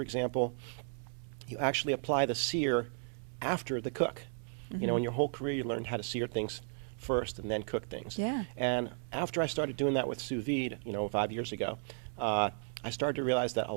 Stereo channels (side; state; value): left; silent; 55 dB below the other